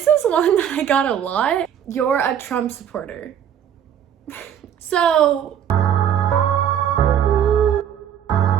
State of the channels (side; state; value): left; quieter; 9.3 dB